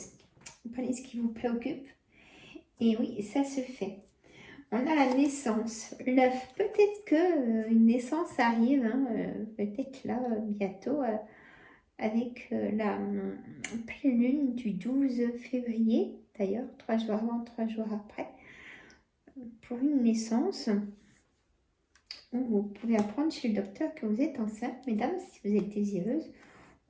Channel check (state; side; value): identical; both; correlation 1.00